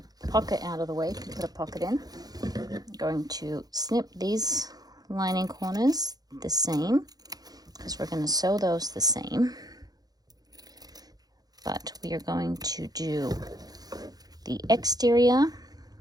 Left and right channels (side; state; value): left; late; 0.19 ms